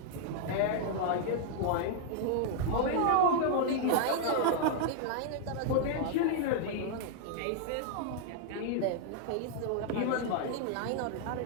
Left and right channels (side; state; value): both; different; correlation -0.01